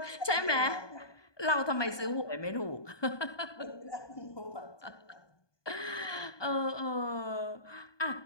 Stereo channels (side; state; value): right; late; 1.2 ms